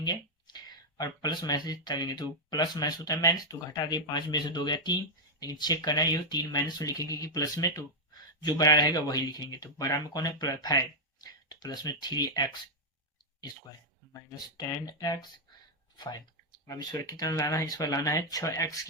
और प्लस माइनस करेंगे तो प्लस माइनस होता है माइनस, तो घटा दिए 5 में से 2 गया 3, लेकिन चेक करना है ये 3 माइनस तो लिखेंगे कि प्लस में, तो जो बड़ा रहेगा वही लिखेंगे। तो बड़ा में कौन है 5, तो प्लस में 3x स्क्वायर माइनस 10x 5। अब इस पर कितना लाना है, इस पर लाना है 6x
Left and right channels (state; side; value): normal; both; correlation -0.03